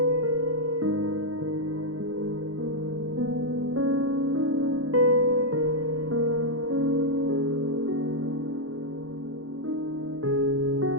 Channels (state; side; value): late; left; 0.66 ms